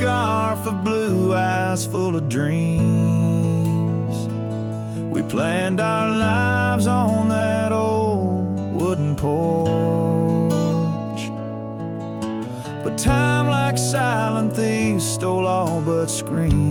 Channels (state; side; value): identical; both; correlation 1.00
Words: of blue eyes full of dreams. We planned our lives on that old wooden porch, but time, like silent thieves, stole all but